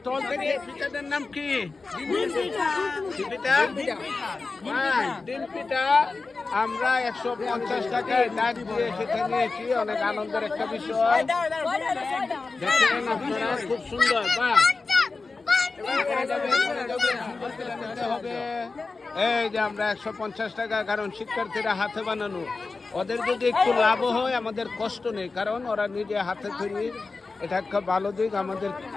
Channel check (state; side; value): quieter; right; 4.0 dB